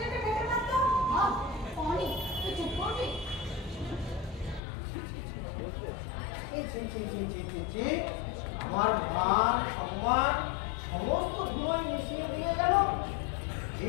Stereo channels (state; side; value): drops out; right; at 4.6 s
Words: যেতে খেতে পারতো। পানি তুই চুপ করবি? আমার মান সম্মান সমস্ত ধুলোয় মিশিয়ে দিয়ে গেল।